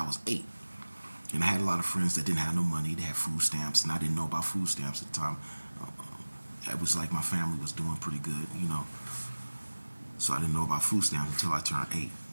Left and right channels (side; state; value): both; inverted; correlation -1.00